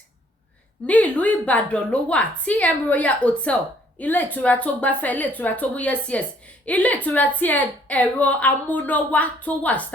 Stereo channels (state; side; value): normal; both; correlation 0.62